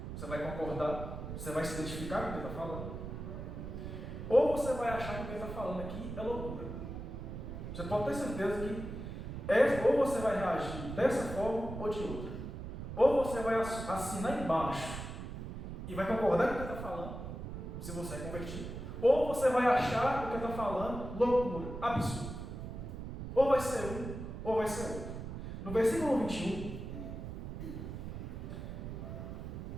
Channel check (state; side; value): noise; right; rumble, 7 dB below the sound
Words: você vai concordar, Você vai se identificar com o que ele está falando. Ou você vai achar que o que ele está falando aqui é loucura. Você pode ter certeza que ou você vai reagir dessa forma ou de outra. Ou você vai assinar embaixo e vai concordar com o que ele está falando, se você é convertido. Ou você vai achar o que ele está falando loucura, absurdo. Ou vai ser um, ou vai ser outro. No versículo 21,